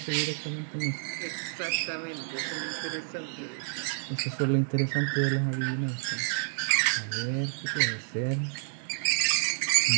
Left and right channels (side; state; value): left; silent; digital silence